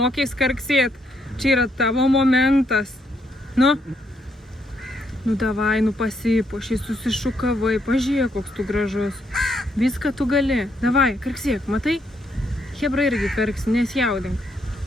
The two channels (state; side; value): normal; both; correlation 0.74